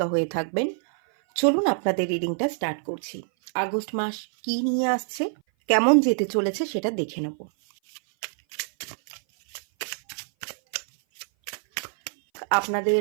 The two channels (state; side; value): silent; left; 57 dB below the other